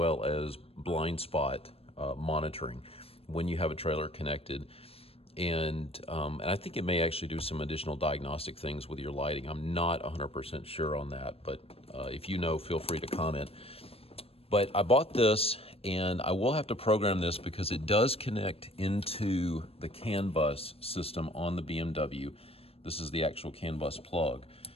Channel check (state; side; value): late; right; 0.28 ms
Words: as blind spot monitoring when you have a trailer connected. And I think it may actually do some additional diagnostic things with your lighting. I'm not 100% sure on that, but if you know, feel free to comment. But I bought this, and I will have to program this because it does connect into the CAN bus system on the BMW. This is the actual CAN bus plug.